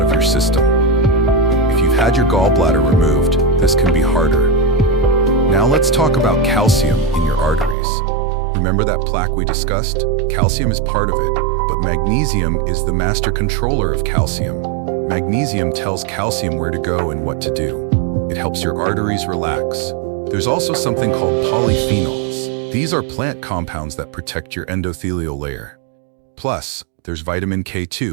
your system. If you've had your gallbladder removed, this can be harder. Now let's talk about calcium in your arteries. Remember that plaque we discussed? Calcium is part of it, but magnesium is the master controller of calcium. Magnesium tells calcium where to go and what to do. It helps your arteries relax. There's also something called polyphenols. These are plant compounds that protect your endothelial layer. Plus, there's vitamin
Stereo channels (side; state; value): left; drops out; at 7.8 s